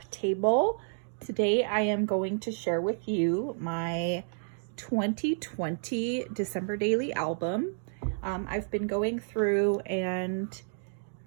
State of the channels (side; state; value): left; silent; digital silence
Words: table. Today I am going to share with you my 2020 December Daily album. I've been going through and